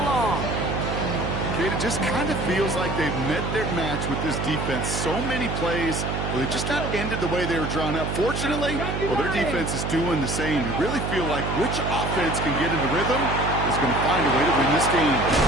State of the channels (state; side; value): noise; right; hum, 3 dB below the sound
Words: long. Kate, it just kind of feels like they've met their match with this defense. So many plays, well, they just not ended the way they were drawn up. Fortunately, well, their defense is doing the same. You really feel like which offense can get into rhythm is going to find a way to win this game.